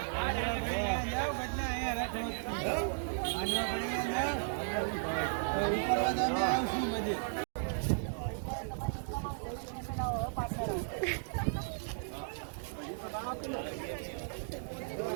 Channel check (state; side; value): silent; left; digital silence